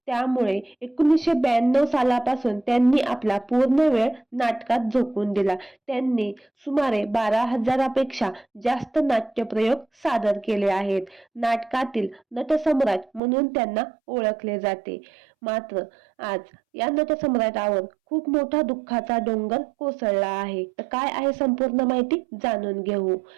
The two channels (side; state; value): left; drops out; at 13.2 s